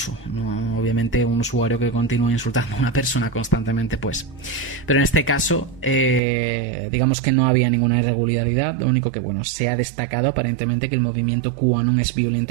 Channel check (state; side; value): drops out; left; at 6.2 s